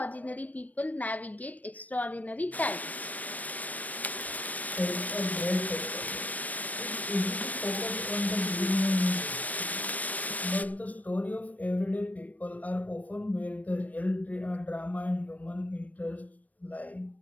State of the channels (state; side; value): late; right; 0.074 ms